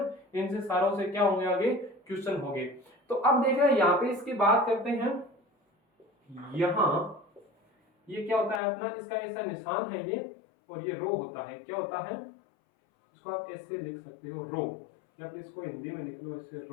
इनसे सारों से क्या होंगे, आगे क्वेश्चन होंगे। तो अब देख रहे हैं यहाँ पे इसकी बात करते हैं। यहां ये क्या होता है अपना, इसका ऐसा निशान है ये, और ये रो होता है, क्या होता है, इसको आप ऐसे लिख सकते हो रो, या फिर इसको हिंदी में लिख लो ऐसे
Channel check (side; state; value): right; drops out; at 8.6 s